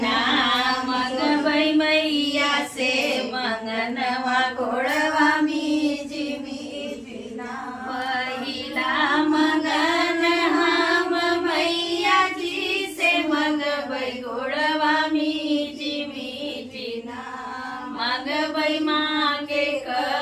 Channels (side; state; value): both; identical; correlation 1.00